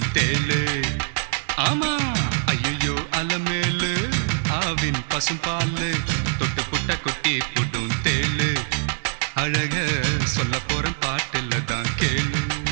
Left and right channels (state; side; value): silent; left; digital silence